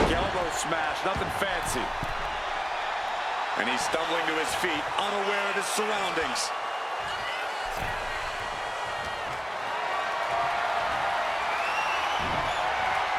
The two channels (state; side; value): identical; both; correlation 1.00